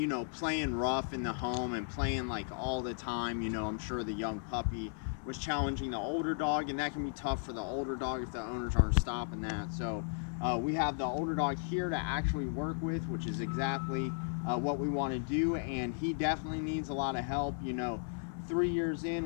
playing rough in the home and playing like all the time. I'm sure the young puppy was challenging the older dog, and that can be tough for the older dog if the owners aren't stopping that. So we have the older dog here to actually work with, which is exactly what we want to do, and he definitely needs a lot of help. 3 years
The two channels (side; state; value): right; silent; 54 dB below the other